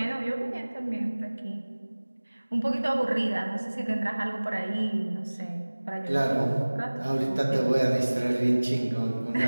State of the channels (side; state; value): both; inverted; correlation -1.00